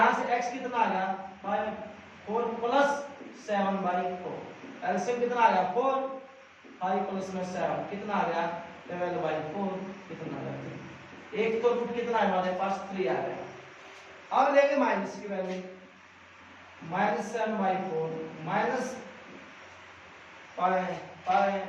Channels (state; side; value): identical; both; correlation 1.00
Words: से x कितना आ गया 4 प्लस 7/4, एलसीएम कितना आ गया 4, 5 प्लस में 7 कितना आ गया 12/4, कितना आ गया 3। एक तो रूट कितना है हमारे पास 3 आ गया। अब लेंगे माइनस की वैल्यू, माइनस 7/4 माइनस